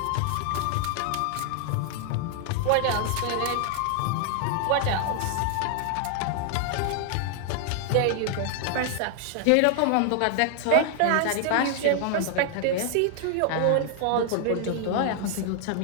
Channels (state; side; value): different; both; correlation 0.00